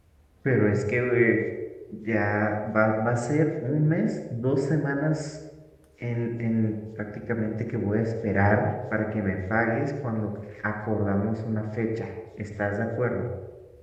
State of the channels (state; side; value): identical; both; correlation 1.00